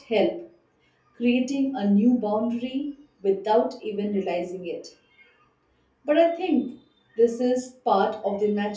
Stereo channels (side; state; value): both; identical; correlation 1.00